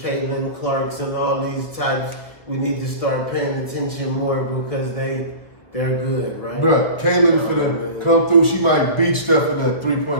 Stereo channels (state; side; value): late; right; 1.4 ms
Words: Clarks and all these types. We need to start paying attention more because they're good, right? Bruh, Caitlin finna come through. She might beat Steph in a